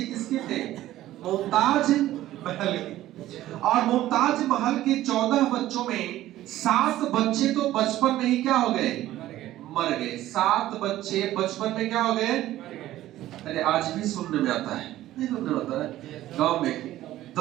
किसके थे? मुमताज महल के। और मुमताज महल के 14 बच्चों में 7 बच्चे तो बचपन में ही क्या हो गए? मर गए। 7 बच्चे बचपन में क्या हो गए? अरे आज भी सुनने में आता है, नहीं सुनने में आता है? गांव में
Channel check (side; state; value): left; quieter; 14.5 dB